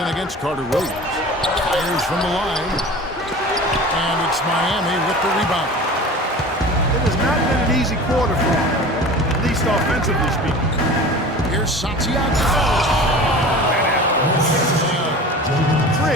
against Carter Williams. Fires from the line. And it's Miami with the rebound. It has not been an easy quarter for him, at least offensively speaking. Here's Santiago.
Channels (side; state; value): both; normal; correlation 0.38